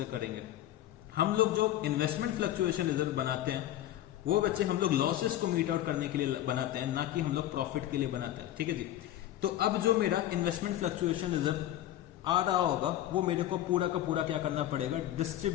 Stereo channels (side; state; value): right; quieter; 13.1 dB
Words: करेंगे। हम लोग जो इन्वेस्टमेंट फ्लक्चुएशन रिजर्व बनाते हैं वो बच्चे हम लोग लॉसेस को मीट आउट करने के लिए बनाते हैं, ना कि हम लोग प्रॉफिट के लिए बनाते हैं। ठीक है जी। तो अब जो मेरा इन्वेस्टमेंट फ्लक्चुएशन रिजर्व आ रहा होगा वो मेरे को पूरा का पूरा क्या करना पड़ेगा,